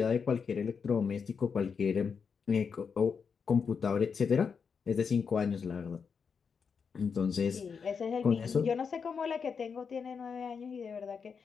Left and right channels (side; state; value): right; quieter; 6.0 dB